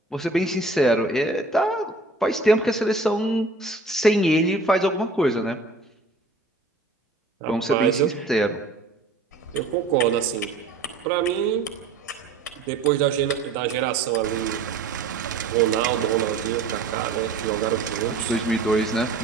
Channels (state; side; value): quieter; left; 3.5 dB